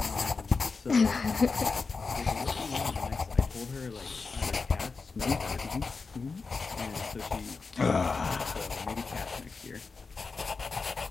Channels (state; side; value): quieter; right; 4.5 dB